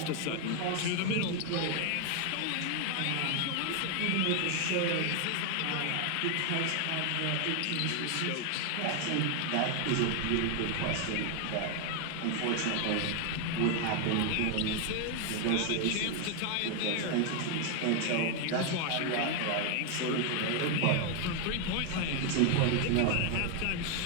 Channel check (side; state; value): both; different; correlation 0.01